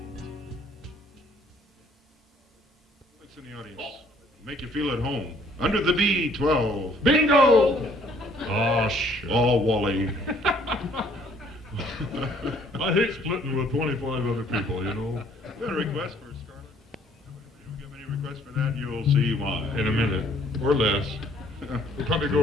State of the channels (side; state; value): both; normal; correlation 0.61